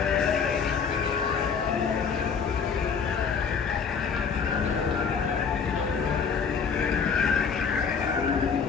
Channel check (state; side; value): quieter; right; 6.0 dB